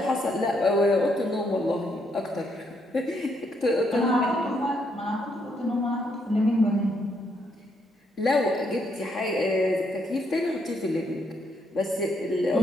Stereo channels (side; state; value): both; normal; correlation 0.75